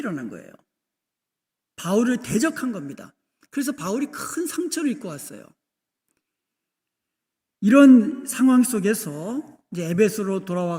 거예요. 바울을 대적한 겁니다. 그래서 바울이 큰 상처를 입고 왔어요. 이런 상황 속에서 이제 에베소로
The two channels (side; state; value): both; identical; correlation 1.00